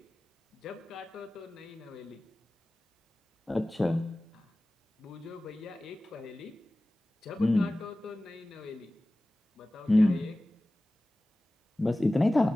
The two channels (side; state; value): both; normal; correlation 0.97